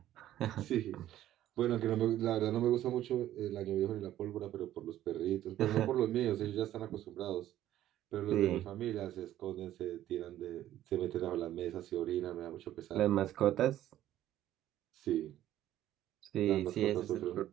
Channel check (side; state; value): left; quieter; 12.9 dB